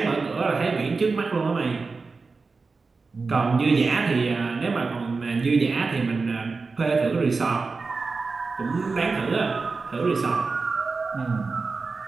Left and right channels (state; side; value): quieter; left; 4.2 dB